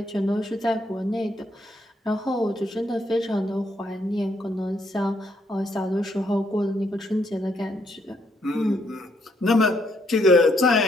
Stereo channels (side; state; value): both; normal; correlation 0.73